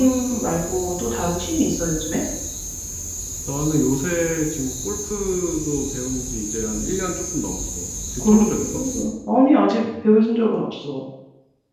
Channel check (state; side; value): identical; both; correlation 1.00